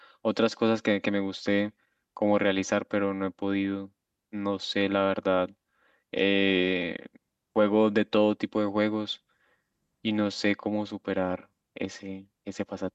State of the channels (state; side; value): identical; both; correlation 1.00